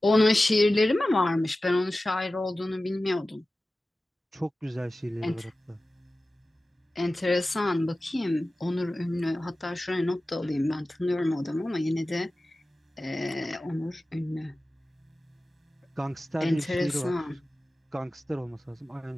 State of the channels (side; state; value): both; normal; correlation 0.96